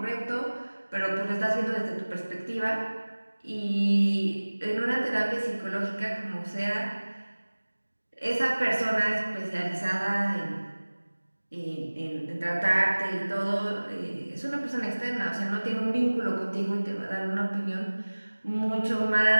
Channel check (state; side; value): inverted; both; correlation -1.00